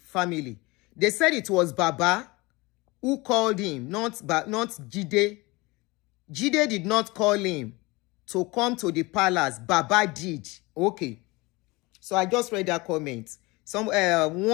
family. They said it was Baba who called him, not Jide. Jide did not call him to come to the palace. Baba did. Okay. So I just read that comment.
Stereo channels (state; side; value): quieter; right; 23.5 dB